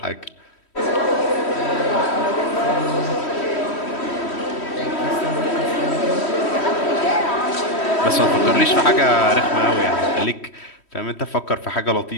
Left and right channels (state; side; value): late; right; 3.1 ms